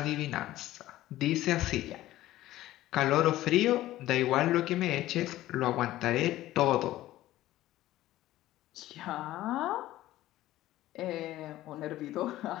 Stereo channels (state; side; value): quieter; right; 15.3 dB